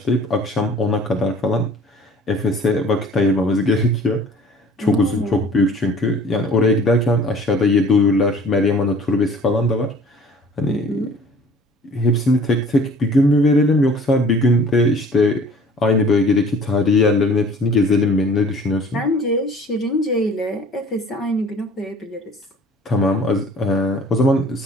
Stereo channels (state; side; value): normal; both; correlation 0.49